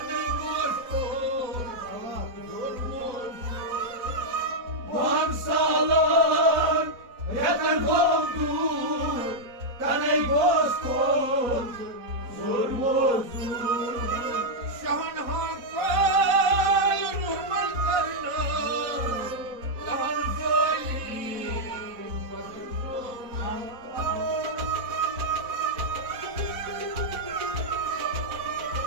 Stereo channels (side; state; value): left; late; 4.1 ms